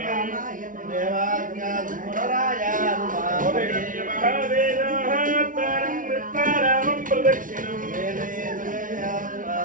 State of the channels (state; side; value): late; left; 0.38 ms